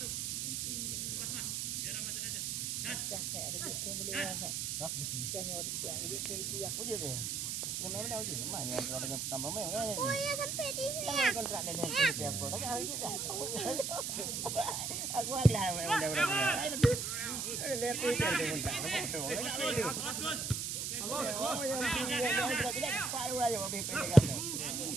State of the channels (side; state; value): right; noise; hiss, 2 dB below the sound